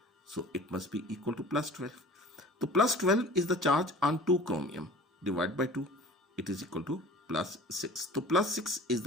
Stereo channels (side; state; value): both; normal; correlation 0.43